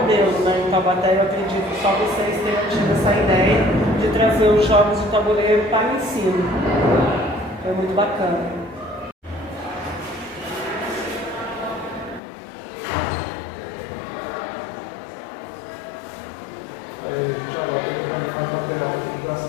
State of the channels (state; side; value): drops out; right; at 12.2 s